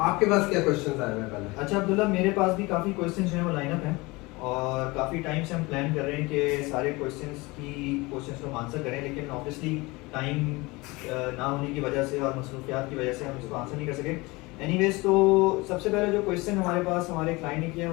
आपके पास क्या क्वेश्चंस आए हुए हैं पहले? अच्छा अब्दुल्ला, मेरे पास भी काफ़ी क्वेश्चंस जो हैं वो लाइन अप हैं और काफ़ी टाइम से हम प्लान कर रहे हैं कि सारे क्वेश्चंस को हम आंसर करें, लेकिन ऑब्वियसली टाइम ना होने की वजह से और मसरूफियात की वजह से हम इसको आंसर नहीं कर सके। एनीवेज, तो सबसे पहले जो क्वेश्चन हमारे पास हमारे क्लाइंट ने किया,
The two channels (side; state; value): right; quieter; 23.5 dB